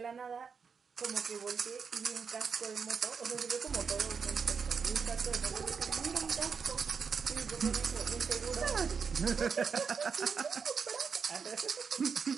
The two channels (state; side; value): quieter; left; 5.9 dB